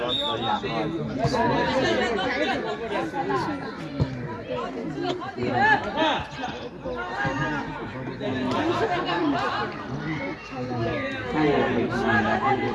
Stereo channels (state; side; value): identical; both; correlation 1.00